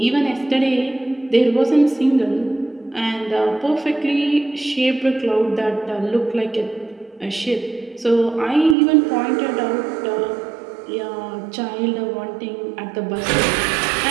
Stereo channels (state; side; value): drops out; left; at 8.8 s